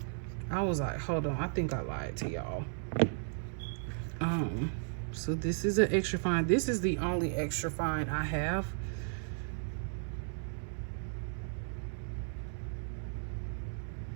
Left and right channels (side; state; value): left; silent; 54 dB below the other